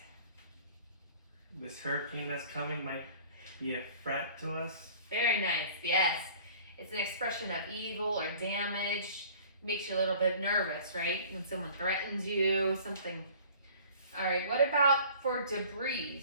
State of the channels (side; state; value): both; inverted; correlation -0.49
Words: This hurricane that's coming might be a threat to us. Very nice. Yes. It's an expression of evil or damage. Makes you a little bit nervous, right? When someone threatens you, something. All right. What about for